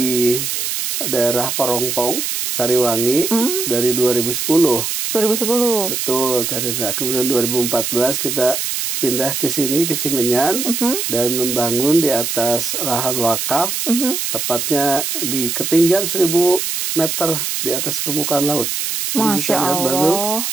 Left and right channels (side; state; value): right; noise; hiss, 2 dB below the sound